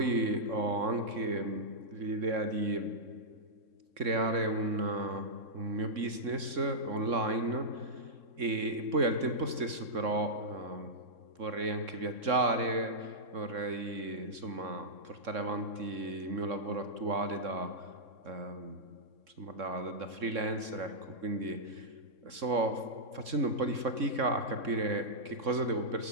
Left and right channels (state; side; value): late; left; 3.6 ms